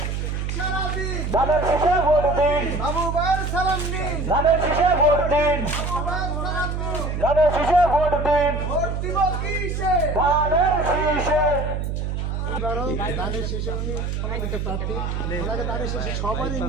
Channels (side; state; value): right; noise; hum, 2 dB below the sound